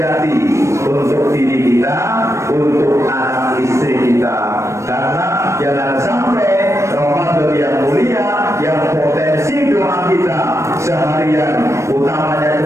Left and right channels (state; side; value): late; left; 0.14 ms